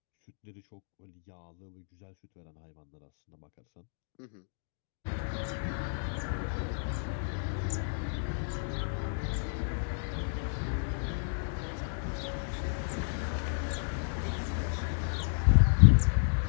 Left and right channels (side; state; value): right; silent; digital silence